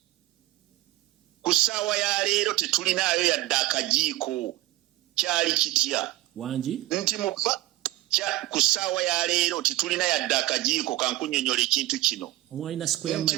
ku ssaawa ya leero tetulinayo yadde akajiiko kyali kitya wangi nti ku ssaawa ya leero tetulina yadde akajiiko kankunyonyola ekintu kino mwalina square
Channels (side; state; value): left; quieter; 16.7 dB